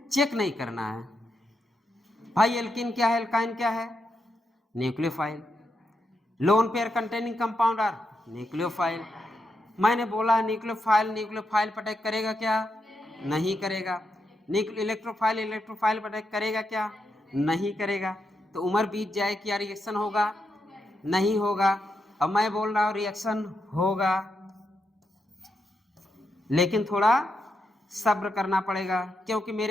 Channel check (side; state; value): both; normal; correlation 0.83